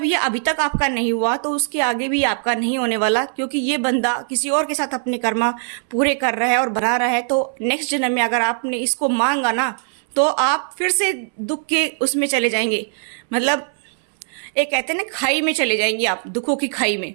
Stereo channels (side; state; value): left; silent; 65 dB below the other